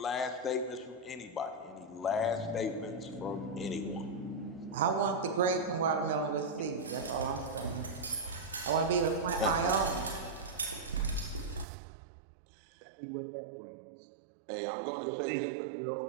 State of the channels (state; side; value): drops out; left; at 11.7 s